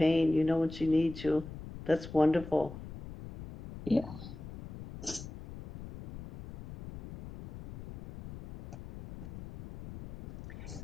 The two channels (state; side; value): noise; left; rumble, 13 dB below the sound